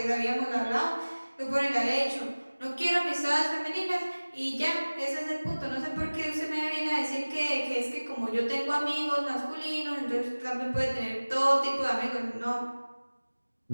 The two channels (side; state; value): both; inverted; correlation -1.00